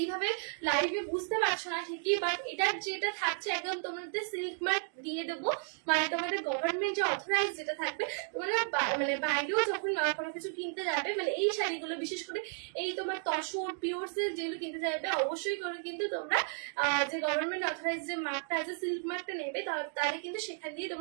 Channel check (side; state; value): left; silent; 55 dB below the other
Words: লাইভে বুঝতে পারছো না ঠিকই, বাট এটা যেটা থাকছে একদম তোমাদের সিল্ক মার্ক দিয়ে দেবো, মানে তোমাদের গভর্নমেন্ট যে অথরাইজ যেটা থাকবে, তোমরা মানে বাইরেও যখন কোনো কিছু কিনতে যাবে, মানে এই শাড়িগুলো বিশেষ করে এই তোমার তসর পিওর সিল্ক যেগুলো কিনতে যাবে, অবশ্যই করে কিন্তু তোমরা যে গভর্নমেন্ট অথরাইজ যে মার্কটা আছে সিল্ক মার্কটা নেবে, তাহলে কিন্তু সেখান দিয়ে